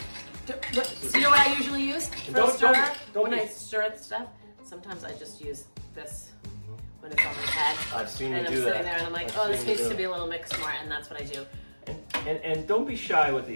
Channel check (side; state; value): both; inverted; correlation -1.00